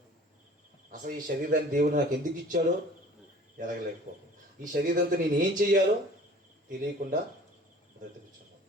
అసలు ఈ శరీరాన్ని దేవుడు నాకు ఎందుకు ఇచ్చాడో ఎరగలేకపోతాను. ఈ శరీరంతో నేను ఏం చెయ్యాలో తెలియకుండా బ్రతుకుతున్నాను.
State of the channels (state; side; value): normal; both; correlation 0.48